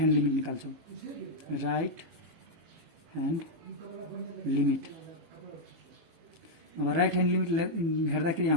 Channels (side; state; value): left; late; 18 ms